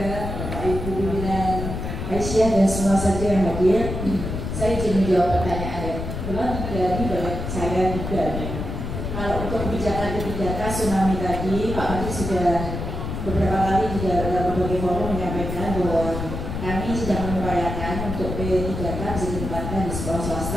Bapak Ibu pimpinan Aisyah dan semua saja yang hadir. Saya ingin menjawab pertanyaan memang dari saya juga. Kalau untuk kebijakan kebijakan tsunami tadi, Pak Menteri sudah beberapa kali juga dalam berbagai forum menyampaikan bahwa kami sedang mengupayakan untuk P3K bisa ditempatkan di sekolah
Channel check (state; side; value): noise; left; rumble, 5 dB below the sound